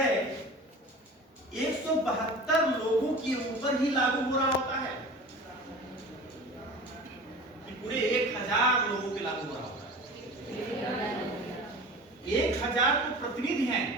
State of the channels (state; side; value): normal; both; correlation 0.37